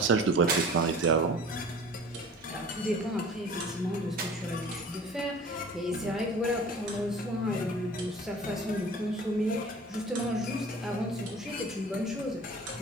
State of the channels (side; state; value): both; normal; correlation 0.43